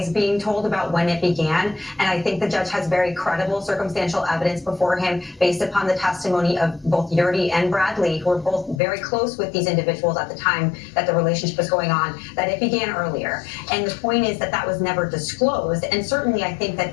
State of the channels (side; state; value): right; drops out; at 8.8 s